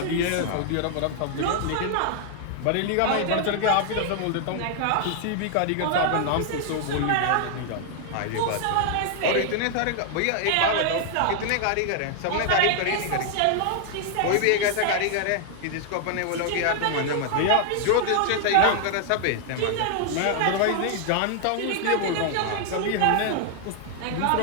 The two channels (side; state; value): both; different; correlation 0.00